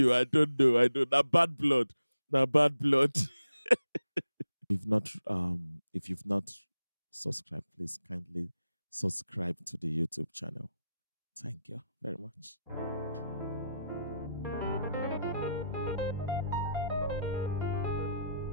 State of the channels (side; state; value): both; inverted; correlation -0.84